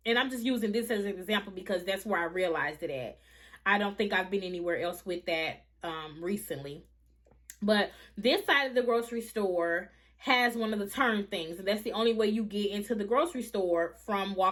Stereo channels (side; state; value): both; identical; correlation 1.00